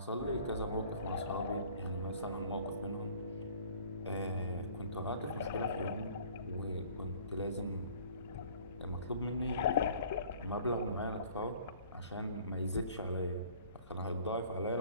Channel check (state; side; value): inverted; both; correlation -0.51